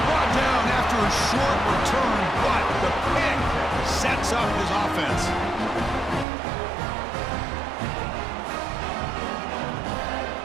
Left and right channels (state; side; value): drops out; left; at 6.2 s